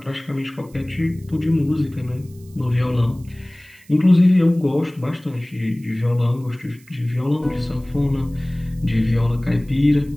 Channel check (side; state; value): right; noise; hiss, 28 dB below the sound